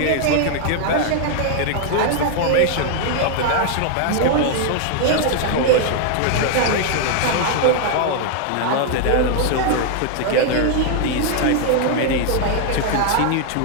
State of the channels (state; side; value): different; both; correlation 0.00